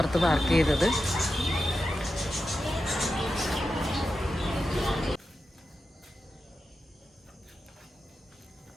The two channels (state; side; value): normal; both; correlation 0.90